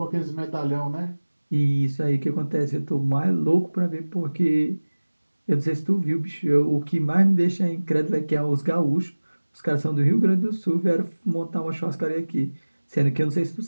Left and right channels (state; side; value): inverted; both; correlation -1.00